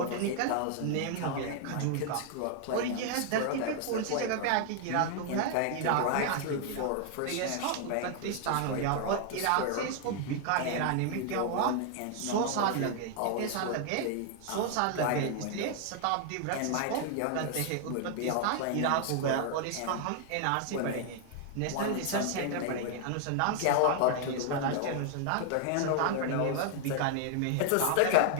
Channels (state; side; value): different; both; correlation 0.00